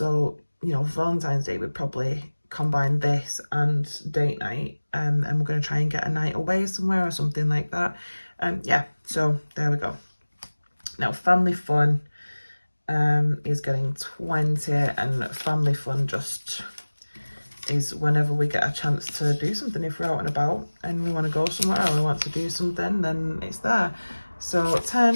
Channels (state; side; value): inverted; both; correlation -1.00